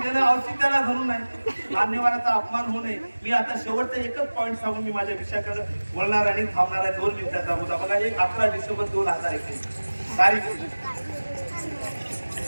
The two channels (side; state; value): both; inverted; correlation -1.00